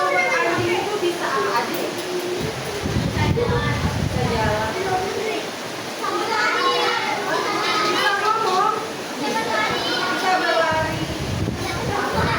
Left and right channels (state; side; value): identical; both; correlation 1.00